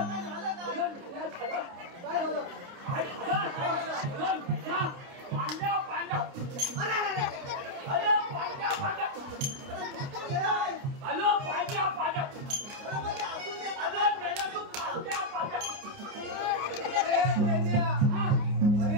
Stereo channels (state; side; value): late; left; 29 ms